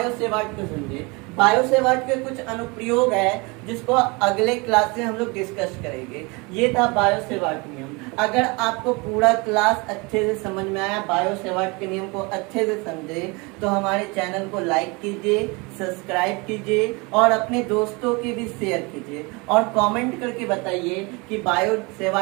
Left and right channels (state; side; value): quieter; left; 27.5 dB